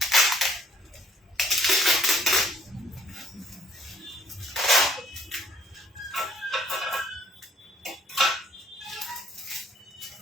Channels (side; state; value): both; normal; correlation 0.63